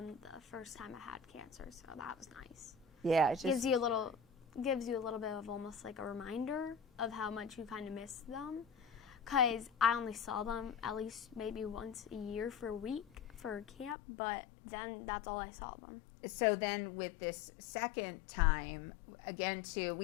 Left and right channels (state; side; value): drops out; right; at 14.0 s